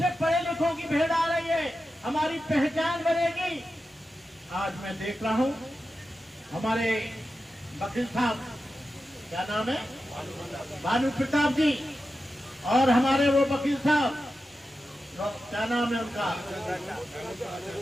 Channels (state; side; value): normal; both; correlation 0.91